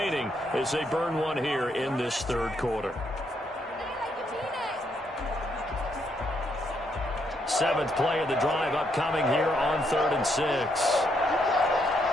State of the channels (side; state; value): both; normal; correlation 0.75